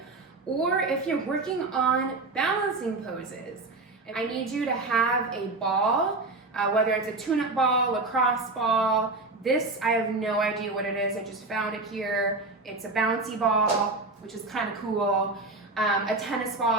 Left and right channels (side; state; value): left; quieter; 3.3 dB